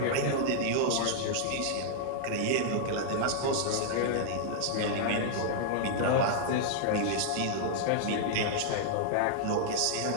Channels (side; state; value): both; different; correlation -0.01